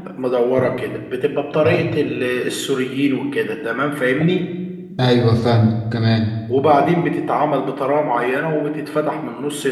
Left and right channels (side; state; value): both; identical; correlation 1.00